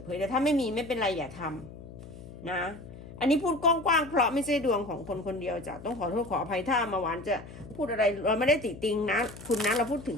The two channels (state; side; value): noise; left; hum, 15 dB below the sound